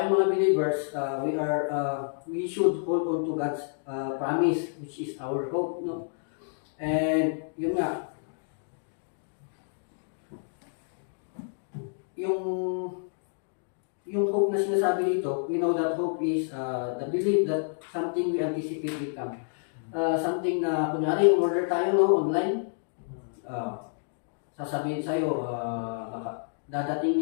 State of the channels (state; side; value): silent; right; digital silence